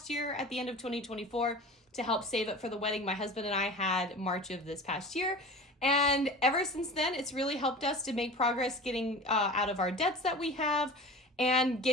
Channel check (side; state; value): both; normal; correlation 0.36